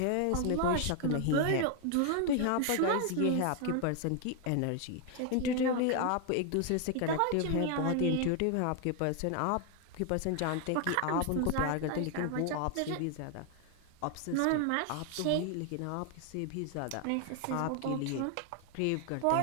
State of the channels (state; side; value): different; both; correlation 0.01